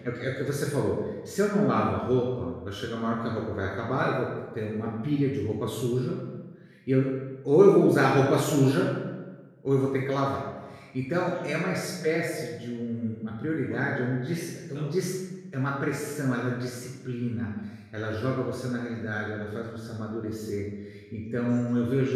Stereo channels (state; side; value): identical; both; correlation 1.00